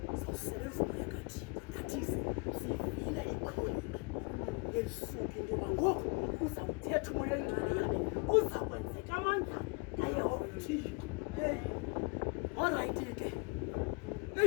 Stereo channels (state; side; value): quieter; right; 32.8 dB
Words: sawusebenza umoya kaThixo nathi sivile ikroniki yelisuku into yoba ngoku uza kuthetha umoya oyingcwele yabe uza kwenzeka amandla kaYehova Thixo. Orayithi ke